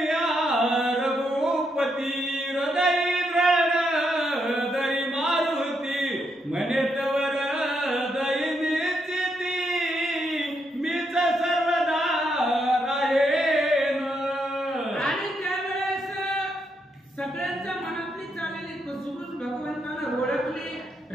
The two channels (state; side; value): normal; both; correlation 0.79